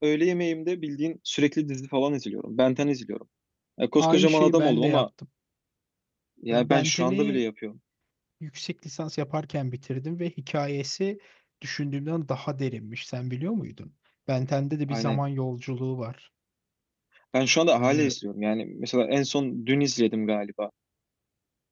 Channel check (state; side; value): identical; both; correlation 1.00